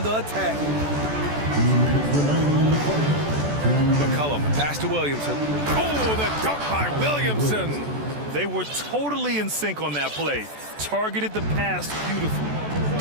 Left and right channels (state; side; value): late; left; 14 ms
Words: the attack. McCollum, pass to Williamson. Oh, the dunk by Williamson. They were totally in sync on that play. Targeted the pass beautifully.